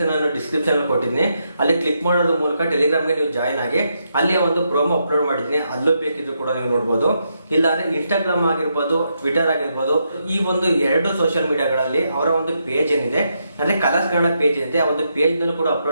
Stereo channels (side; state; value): both; inverted; correlation -0.81